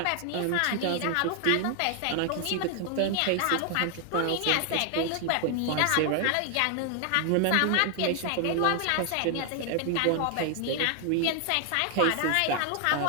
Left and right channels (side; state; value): both; different; correlation 0.00